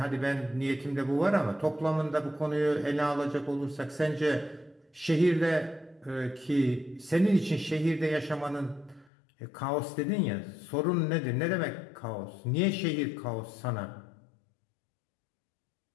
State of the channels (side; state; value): right; drops out; at 9.1 s